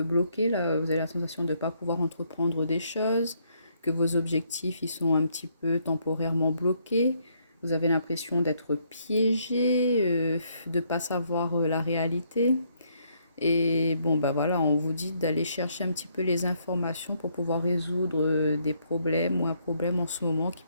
bloqué, là, vous avez la sensation de ne pas pouvoir entreprendre des choses, que vos objectifs ils sont un petit peu temporairement bloqués. Vous avez l'impression d'être piégé, de ne pas savoir la réalité. Et bon, voilà, on vous dit d'aller chercher un petit peu les informations pour pouvoir résoudre des problèmes ou un problème en ce moment qui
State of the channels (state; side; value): inverted; both; correlation -0.71